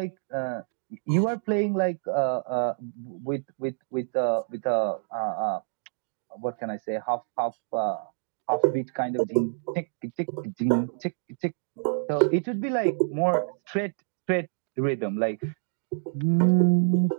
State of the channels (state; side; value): silent; left; digital silence